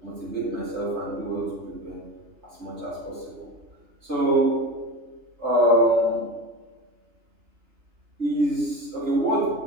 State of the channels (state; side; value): late; left; 3.3 ms